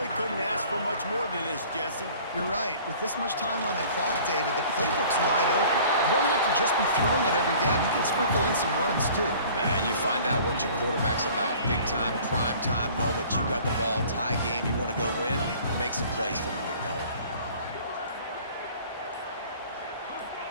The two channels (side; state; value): both; inverted; correlation -0.49